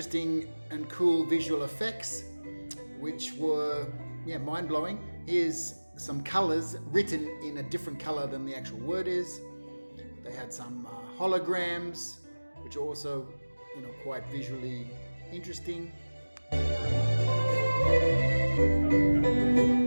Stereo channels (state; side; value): inverted; both; correlation -1.00